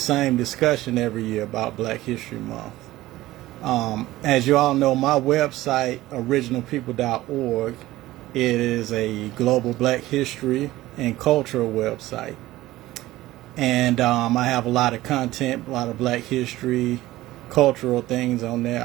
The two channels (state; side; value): quieter; left; 16.7 dB